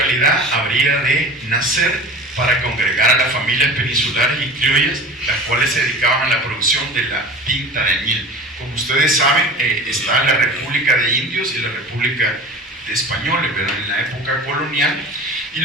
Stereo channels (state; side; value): normal; both; correlation 0.37